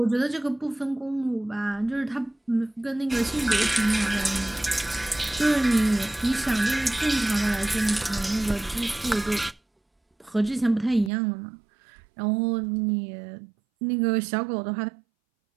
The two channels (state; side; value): drops out; left; at 11.1 s